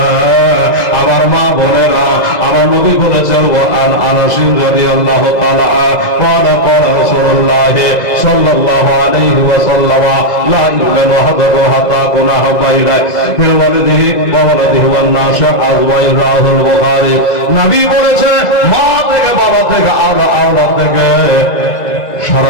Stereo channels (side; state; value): right; late; 2.0 ms